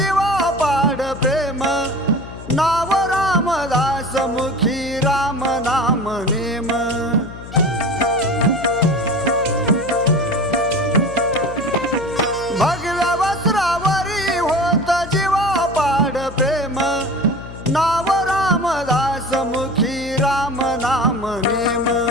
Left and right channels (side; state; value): left; noise; hum, 14 dB below the sound